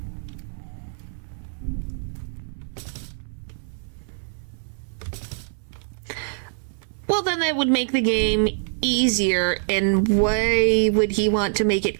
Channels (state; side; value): silent; left; 62 dB below the other